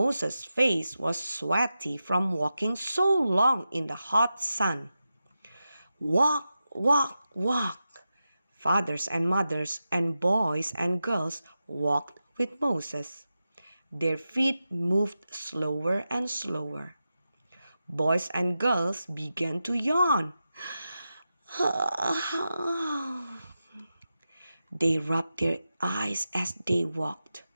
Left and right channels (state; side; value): inverted; both; correlation -0.91